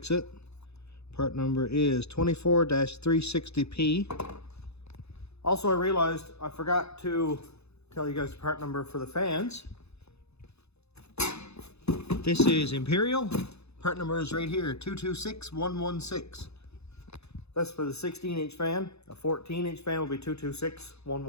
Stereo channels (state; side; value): late; right; 0.80 ms